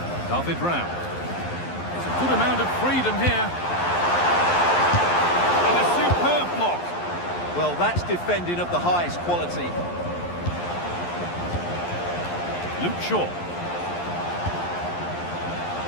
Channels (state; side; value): late; right; 11 ms